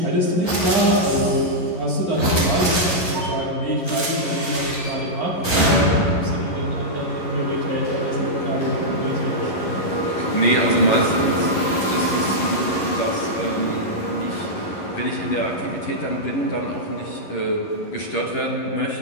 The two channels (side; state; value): right; late; 11 ms